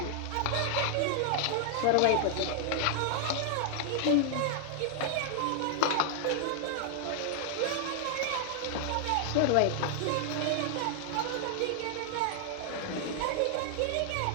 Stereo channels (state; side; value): different; both; correlation -0.01